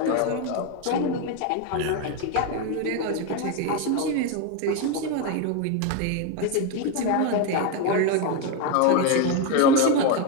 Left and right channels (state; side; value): different; both; correlation 0.02